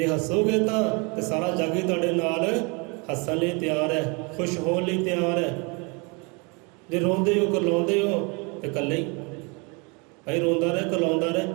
ਹੱਸੋਗੇ ਤਾਂ ਸਾਰਾ ਜੱਗ ਹੀ ਤੁਹਾਡੇ ਨਾਲ ਹੱਸਣ ਲਈ ਤਿਆਰ ਹੈ, ਖੁਸ਼ ਹੋਣ ਲਈ ਤਿਆਰ ਹੈ। ਜੇ ਰੋਂਦੇ ਹੋ, ਕਰਲਾਉਂਦੇ ਹੋ ਤੇ ਇਕੱਲੇ ਹੀ ਭਾਈ ਰੋਂਦਾ ਰਹੇ, ਕਰਲਾਉਂਦਾ ਰਹੇ,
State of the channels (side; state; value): left; quieter; 31.0 dB